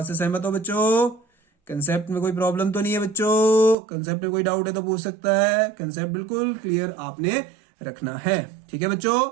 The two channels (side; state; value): left; drops out; at 3.8 s